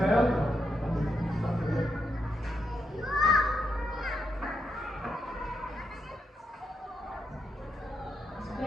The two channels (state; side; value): normal; both; correlation 0.82